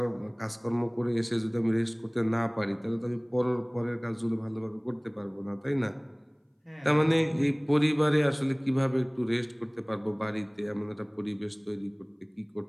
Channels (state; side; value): identical; both; correlation 1.00